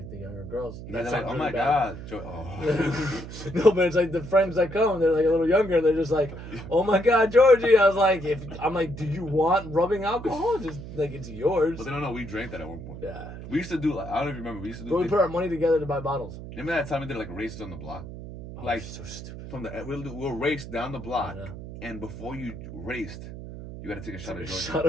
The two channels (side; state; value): right; noise; hum, 11 dB below the sound